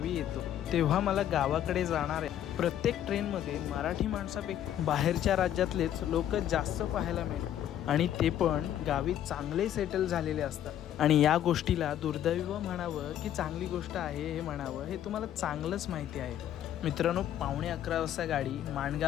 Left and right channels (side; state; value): right; quieter; 11.1 dB